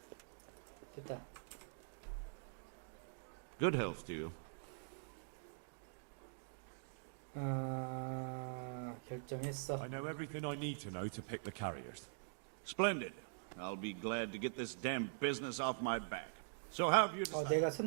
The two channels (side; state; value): left; silent; digital silence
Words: 됐다. Good health to you. 결정했어. I know everything I need to know to pick the carriers. Splendid. I'll be glad to get this damn business off my back. So how have you decided? 내가